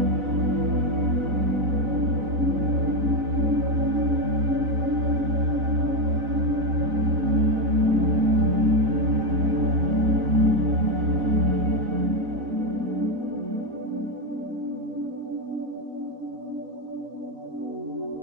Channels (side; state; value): left; late; 4.0 ms